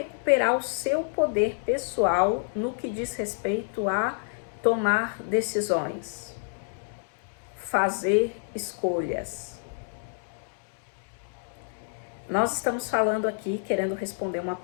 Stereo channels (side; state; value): right; silent; digital silence